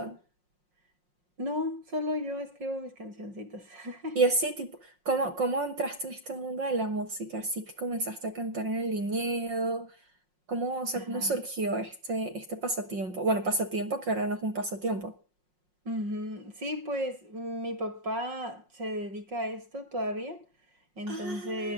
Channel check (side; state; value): left; late; 5.5 ms